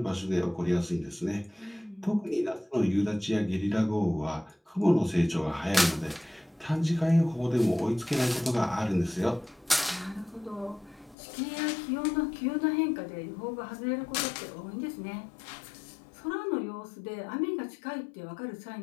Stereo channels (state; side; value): drops out; right; at 11.2 s